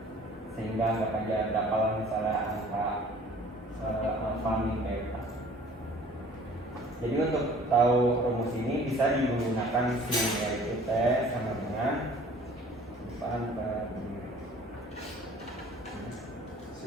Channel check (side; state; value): both; normal; correlation 0.51